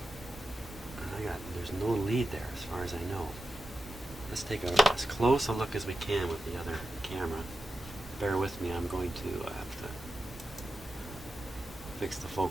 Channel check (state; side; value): normal; both; correlation 0.90